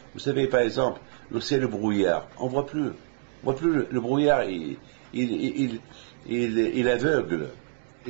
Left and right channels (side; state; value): left; silent; digital silence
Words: Vous savez, par exemple, lorsqu'il y a le brouillard, on voit plus le brouillard, il aveugle.